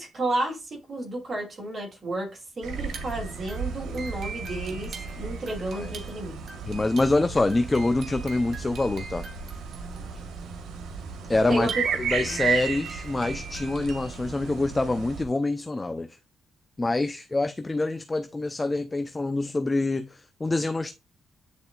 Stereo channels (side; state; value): both; normal; correlation 0.89